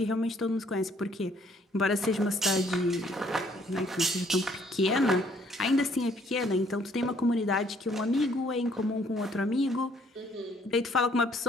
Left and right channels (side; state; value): both; normal; correlation 0.63